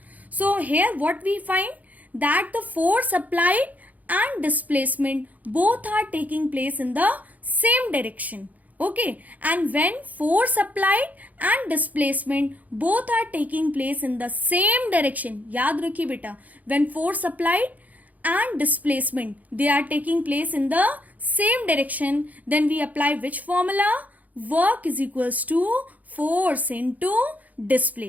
So here what we find that the force applied and displacement both are taking place in the same direction. Okay, and when force applied and displacement both are taking place in the same direction, याद रखिए बेटा, when force applied and displacement they are taking place in the same direction, then we apply which formula? Work is equals to force into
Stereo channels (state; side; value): late; left; 0.078 ms